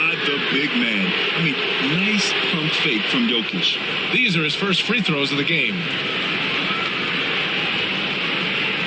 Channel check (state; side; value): identical; both; correlation 1.00